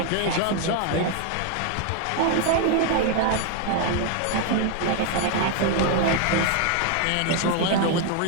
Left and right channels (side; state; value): both; different; correlation 0.01